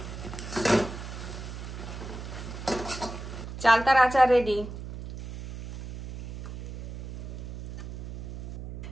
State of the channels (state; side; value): noise; right; hum, 10 dB below the sound